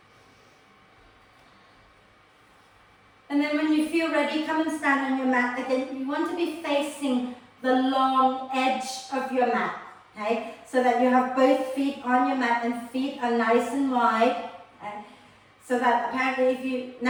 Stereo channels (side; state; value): both; identical; correlation 1.00